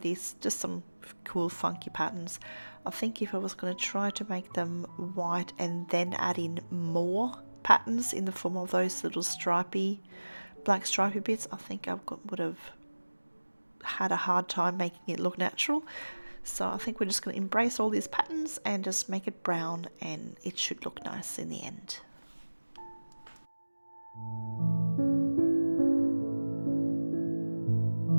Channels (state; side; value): inverted; both; correlation -1.00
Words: these, just some cool funky patterns. I think if I was going to try to make them white and then add in more patterns in the form of those little stripy, black stripy bits, I think I would have had a hard time making it look natural. So I think we're just going to embrace all these patterns and just make it brown, and it should look nice in the end.